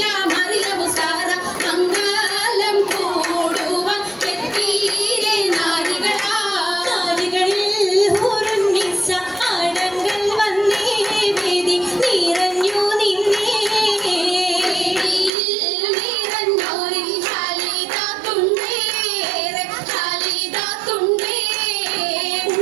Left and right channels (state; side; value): drops out; left; at 15.3 s